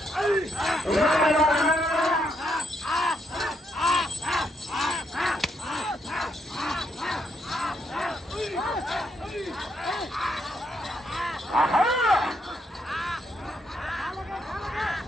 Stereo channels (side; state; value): both; normal; correlation 0.76